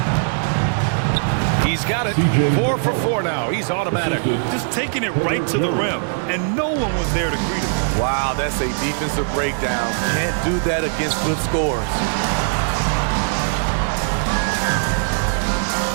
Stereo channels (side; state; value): left; silent; 63 dB below the other